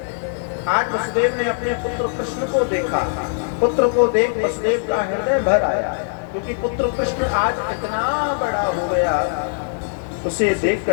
आज वसुदेव ने अपने पुत्र कृष्ण को देखा, पुत्र को देख वसुदेव का हृदय भर आया, क्योंकि पुत्र कृष्ण आज इतना बड़ा हो गया, उसे देख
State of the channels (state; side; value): silent; right; digital silence